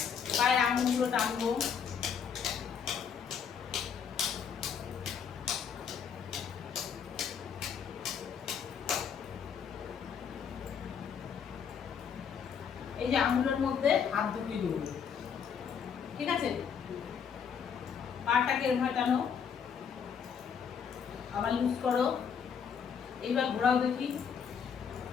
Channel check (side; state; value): right; quieter; 7.1 dB